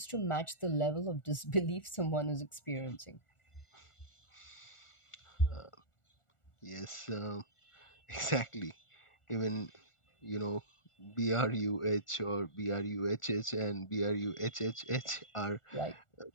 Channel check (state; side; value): late; right; 1.4 ms